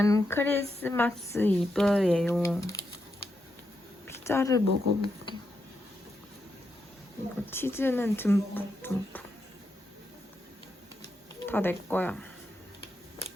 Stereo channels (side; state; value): both; normal; correlation 0.84